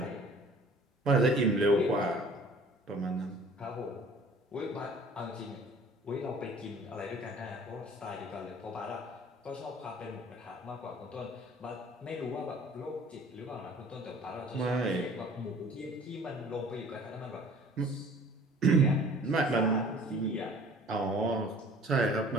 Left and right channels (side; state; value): both; normal; correlation 0.50